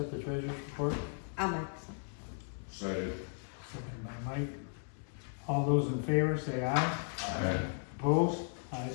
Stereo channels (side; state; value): right; silent; digital silence